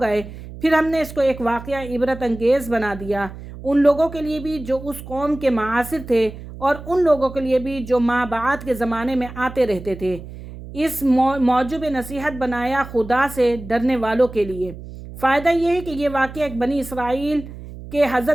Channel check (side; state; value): right; noise; hum, 13 dB below the sound